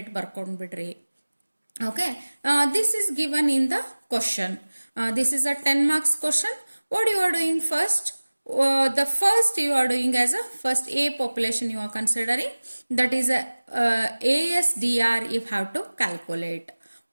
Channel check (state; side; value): inverted; both; correlation -1.00